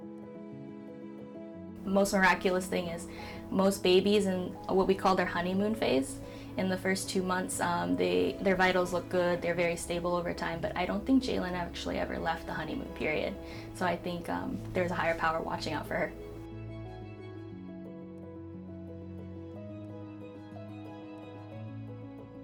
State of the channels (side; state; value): both; identical; correlation 1.00